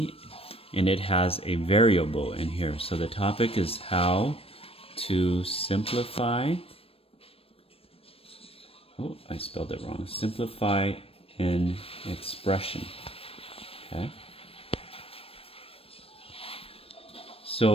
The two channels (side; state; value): right; late; 0.28 ms